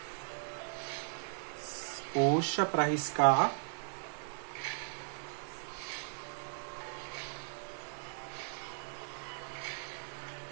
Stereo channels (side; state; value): left; silent; digital silence